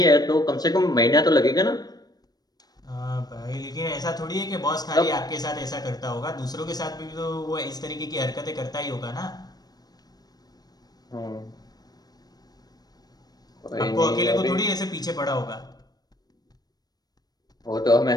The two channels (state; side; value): late; right; 0.19 ms